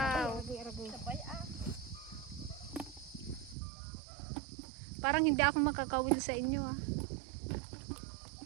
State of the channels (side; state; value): left; drops out; at 3.6 s